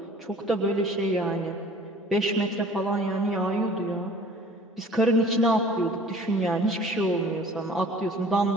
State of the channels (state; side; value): normal; both; correlation 0.49